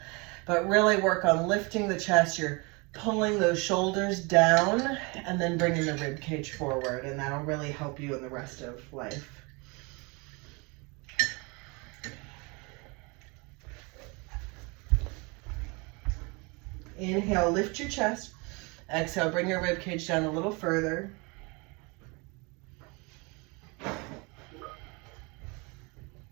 But really work on lifting the chest. You're pulling those shoulders down and then bringing the rib cage forward, and that'll really help you in the rest of life. Inhale, lift your chest. Exhale, bring your rib cage down a little further.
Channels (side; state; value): left; quieter; 28.8 dB